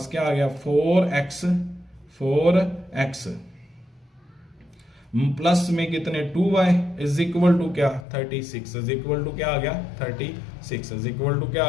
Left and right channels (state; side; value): drops out; right; at 8.1 s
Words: क्या आ गया 4x प्लस में कितने 2y इज इक्वल टू क्या 36 इज इक्वल टू क्या आ गया 36 इज इक्वल टू क्या